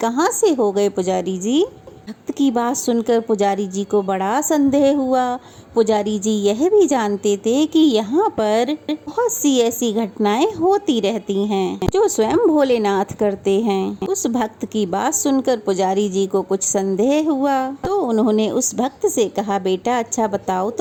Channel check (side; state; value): both; identical; correlation 1.00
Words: से हो गए पुजारी जी? भक्त की बात सुनकर पुजारी जी को बड़ा संदेह हुआ। पुजारी जी यह भी जानते थे कि यहाँ पर बहुत सी ऐसी घटनाएं होती रहती हैं जो स्वयं भोलेनाथ करते हैं। उस भक्त की बात सुनकर पुजारी जी को कुछ संदेह हुआ, तो उन्होंने उस भक्त से कहा, बेटा अच्छा बताओ